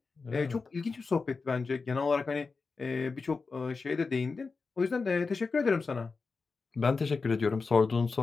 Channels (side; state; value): right; quieter; 4.4 dB